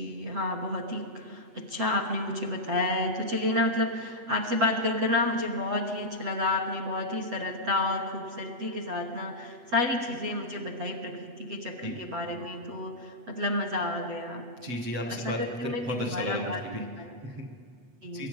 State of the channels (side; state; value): left; late; 8.2 ms